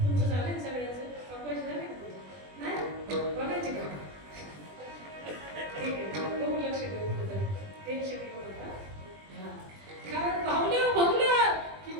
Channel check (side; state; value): left; late; 20 ms